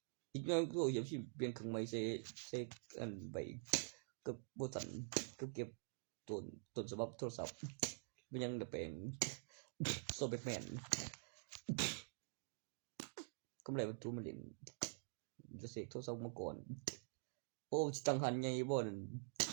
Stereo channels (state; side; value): silent; left; digital silence